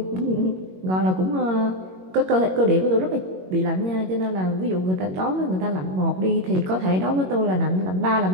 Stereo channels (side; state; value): left; late; 21 ms